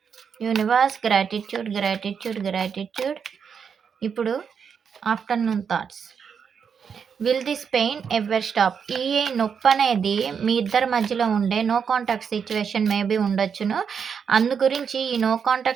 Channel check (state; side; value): quieter; left; 6.8 dB